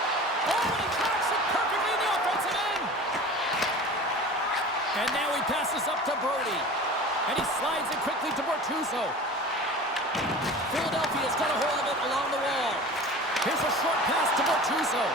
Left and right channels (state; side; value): normal; both; correlation 0.38